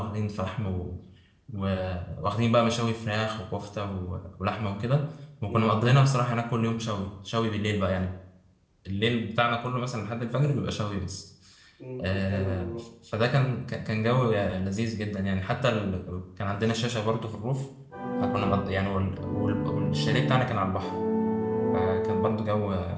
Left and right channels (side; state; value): both; identical; correlation 1.00